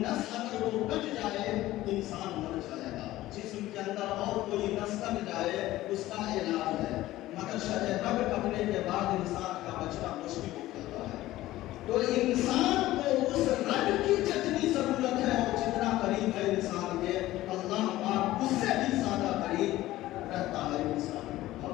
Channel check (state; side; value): quieter; right; 16.1 dB